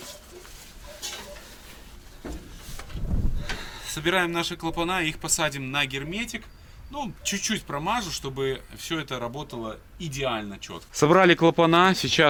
Собираем наши клапана, их посадим на герметик. Ну, чуть-чуть промажу, чтобы все это работало идеально четко. Собрали клапана,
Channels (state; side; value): identical; both; correlation 1.00